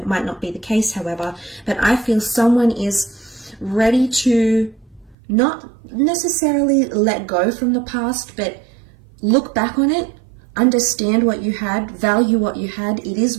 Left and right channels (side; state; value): left; drops out; at 5.2 s